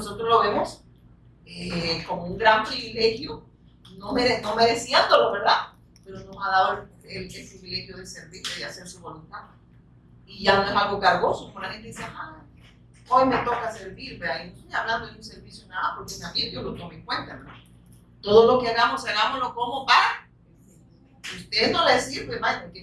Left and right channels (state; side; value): identical; both; correlation 1.00